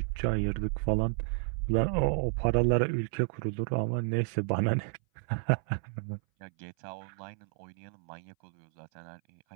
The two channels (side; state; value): left; silent; 57 dB below the other